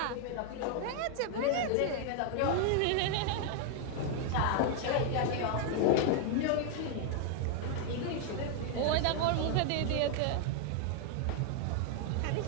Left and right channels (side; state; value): both; different; correlation 0.00